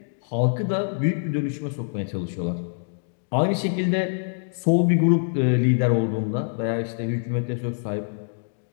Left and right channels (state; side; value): silent; right; digital silence